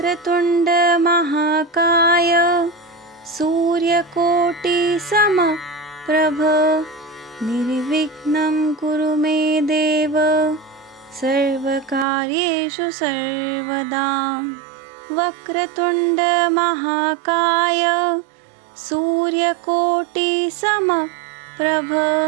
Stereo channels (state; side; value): drops out; left; at 12.1 s